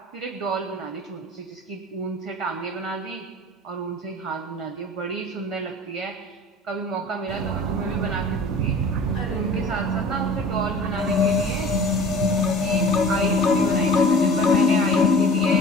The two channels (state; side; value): normal; both; correlation 0.43